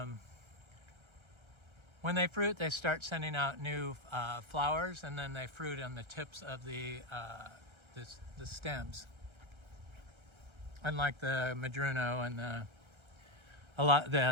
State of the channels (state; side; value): late; left; 1.3 ms